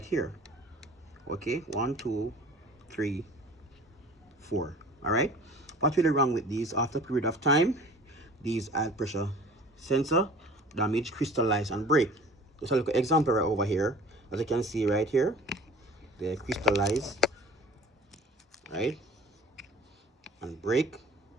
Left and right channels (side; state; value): both; normal; correlation 0.45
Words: here. Okay, 1 2 3 4. All right, what's really wrong with these? After a period of time, these oil pressure sensor damage, crystallize, and break. Just a little example right over here. As you can see right here, they crystallize, right, and break,